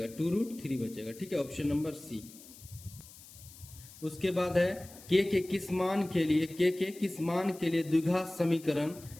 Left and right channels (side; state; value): left; noise; hiss, 19 dB below the sound